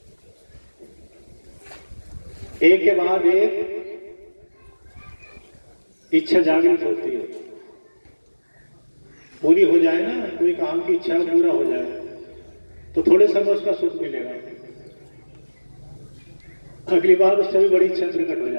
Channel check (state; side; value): inverted; both; correlation -1.00